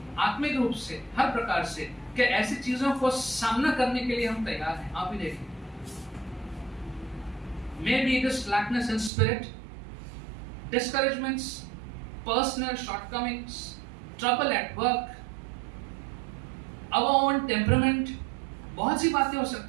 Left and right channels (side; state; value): left; drops out; at 9.1 s